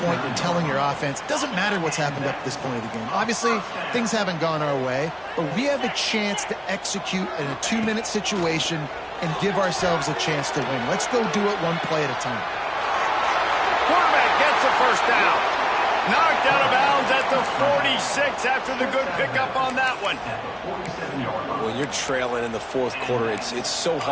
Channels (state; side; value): identical; both; correlation 1.00